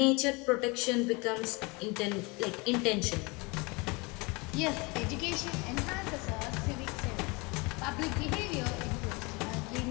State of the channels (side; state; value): right; quieter; 27.2 dB